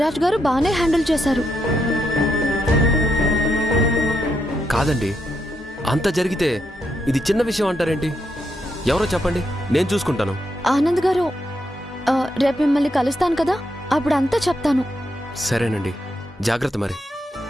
గారు బానే హ్యాండిల్ చేశారు. కాదండి, అంత జరిగితే ఇది చిన్న విషయం అంటారేంటి? ఎవరో చెప్పండి, నేను చూసుకుంటాను. ఆనంద్ గారు, రేపు మిమ్మల్ని కలుస్తాను కదా, అప్పుడు అంతా చెప్తాను. సరేనండి, జాగ్రత్త. మరి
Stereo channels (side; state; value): both; normal; correlation 0.81